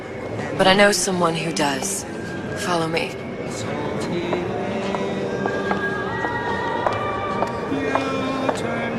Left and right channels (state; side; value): identical; both; correlation 1.00